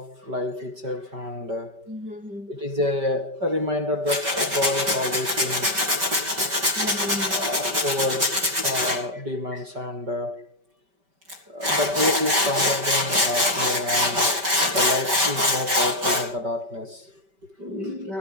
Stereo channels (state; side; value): late; left; 5.2 ms